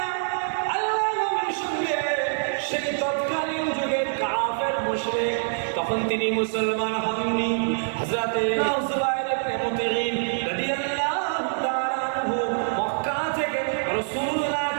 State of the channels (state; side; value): silent; left; digital silence